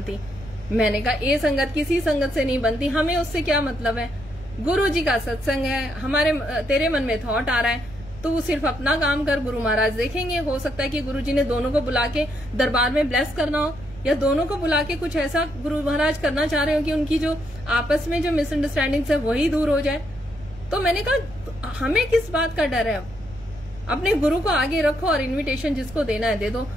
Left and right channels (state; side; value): noise; right; rumble, 18 dB below the sound